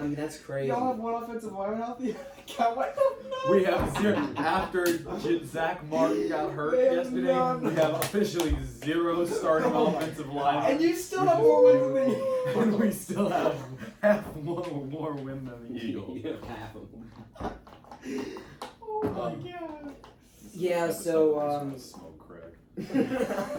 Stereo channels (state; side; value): identical; both; correlation 1.00